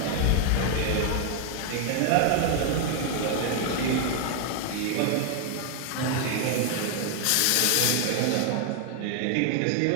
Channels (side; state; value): both; different; correlation 0.00